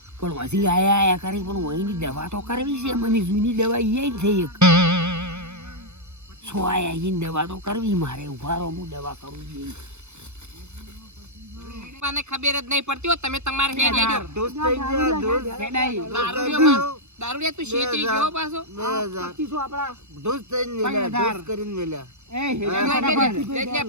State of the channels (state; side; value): late; left; 0.82 ms